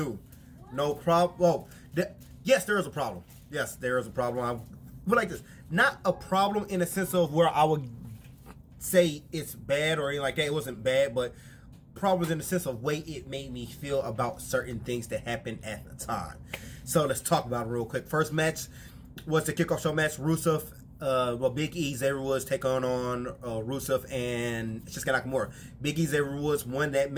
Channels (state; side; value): identical; both; correlation 1.00